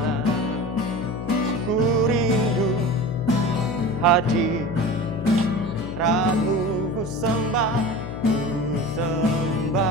hadirat-Mu, ku sembah,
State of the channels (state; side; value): noise; left; hum, 8 dB below the sound